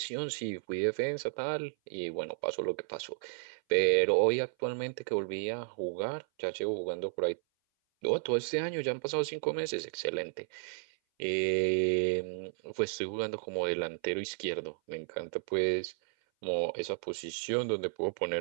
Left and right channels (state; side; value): silent; left; 56 dB below the other